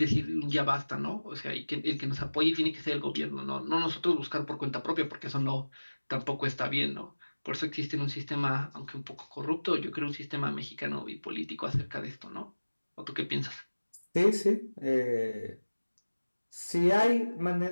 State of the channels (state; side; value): inverted; both; correlation -1.00